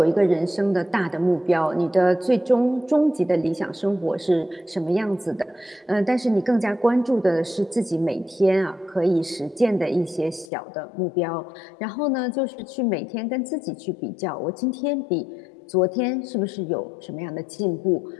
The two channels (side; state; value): right; drops out; at 10.5 s